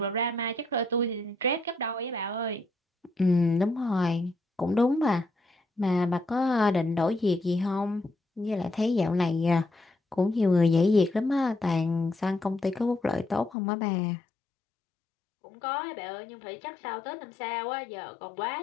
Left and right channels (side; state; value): right; drops out; at 13.6 s